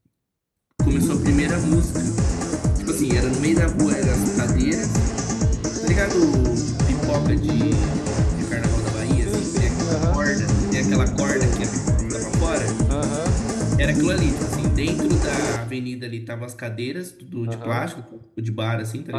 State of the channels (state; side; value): identical; both; correlation 1.00